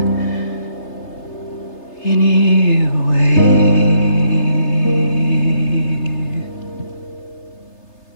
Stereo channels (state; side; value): late; right; 3.3 ms